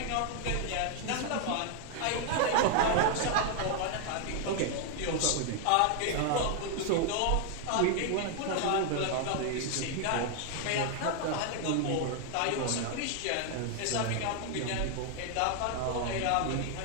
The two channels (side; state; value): both; different; correlation 0.00